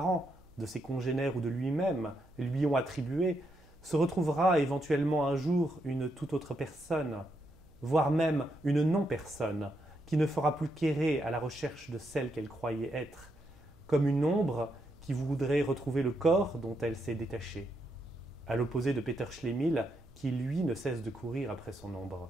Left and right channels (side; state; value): right; noise; hum, 28 dB below the sound